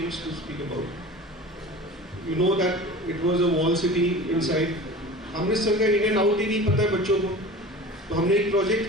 to speak about. You know that it was a wall city inside. Amritsar का in and out ही नहीं पता है बच्चों को. तो हमने एक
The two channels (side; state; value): both; normal; correlation 0.38